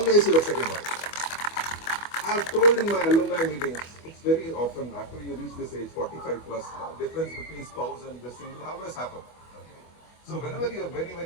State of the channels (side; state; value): right; late; 25 ms